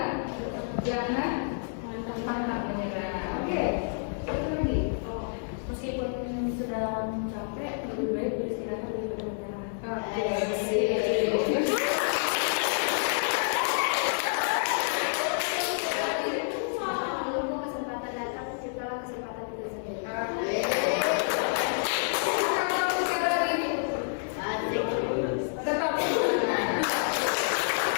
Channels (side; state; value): right; silent; 59 dB below the other